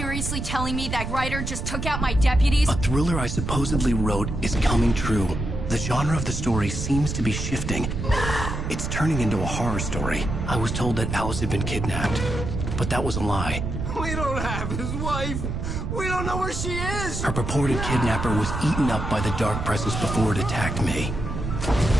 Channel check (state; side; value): noise; right; rumble, 4 dB below the sound